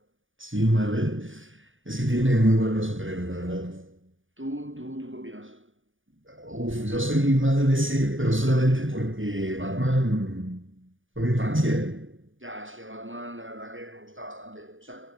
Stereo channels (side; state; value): left; late; 0.57 ms